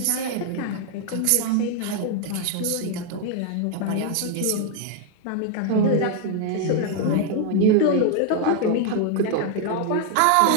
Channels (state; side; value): different; both; correlation 0.00